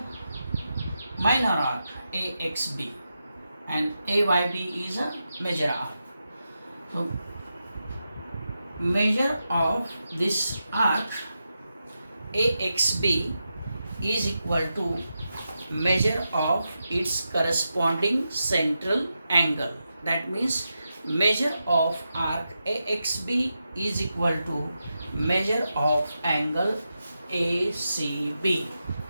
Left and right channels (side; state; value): both; inverted; correlation -0.88